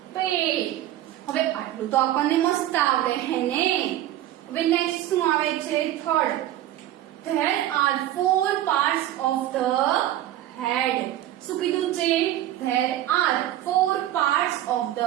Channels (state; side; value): quieter; left; 13.3 dB